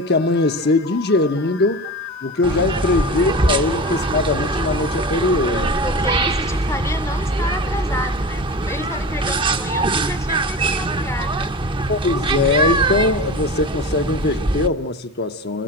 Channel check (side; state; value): both; normal; correlation 0.30